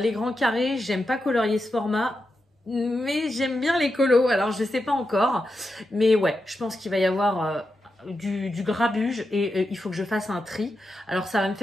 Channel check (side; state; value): both; normal; correlation 0.88